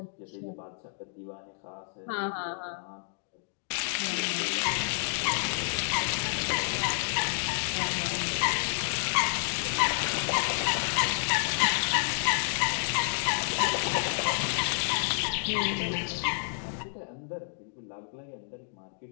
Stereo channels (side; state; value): right; silent; digital silence